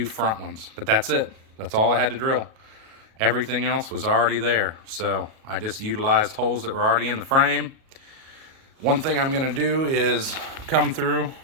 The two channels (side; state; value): left; late; 37 ms